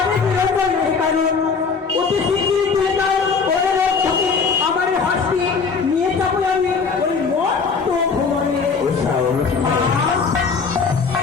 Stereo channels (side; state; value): right; quieter; 5.2 dB